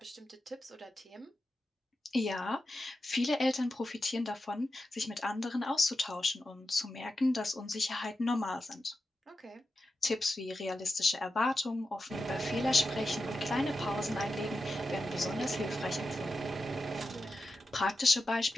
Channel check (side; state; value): both; normal; correlation 0.90